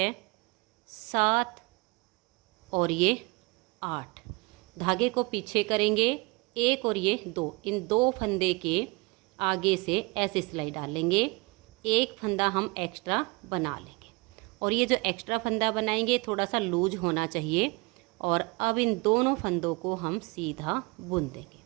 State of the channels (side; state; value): left; quieter; 27.1 dB